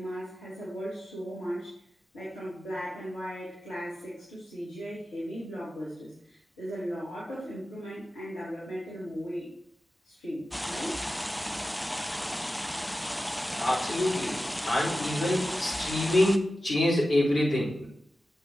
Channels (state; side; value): normal; both; correlation 0.93